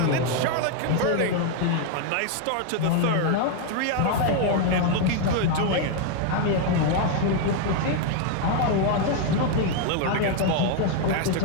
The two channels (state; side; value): different; both; correlation 0.01